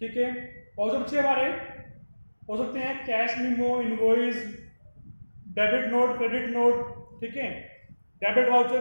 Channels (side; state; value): both; inverted; correlation -1.00